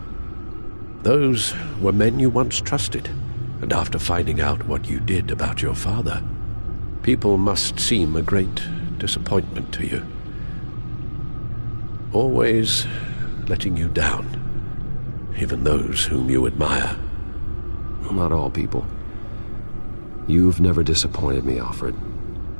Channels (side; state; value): both; inverted; correlation -1.00